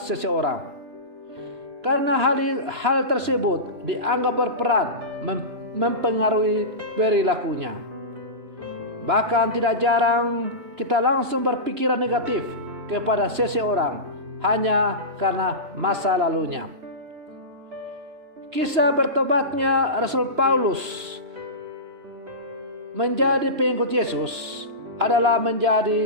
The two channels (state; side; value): late; left; 3.0 ms